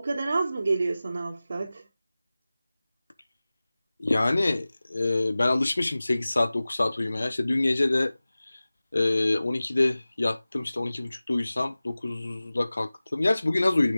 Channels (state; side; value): inverted; both; correlation -0.98